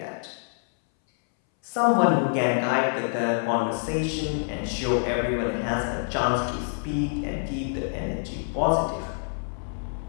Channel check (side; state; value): right; silent; 61 dB below the other